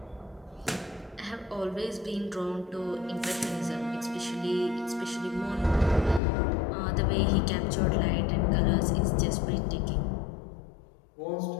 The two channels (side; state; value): right; drops out; at 6.2 s